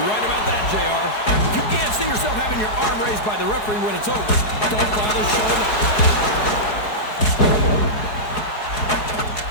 right about that, JR. If you can't see yourself having your arm raised by the referee when it's over, don't bother showing up.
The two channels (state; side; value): late; right; 4.7 ms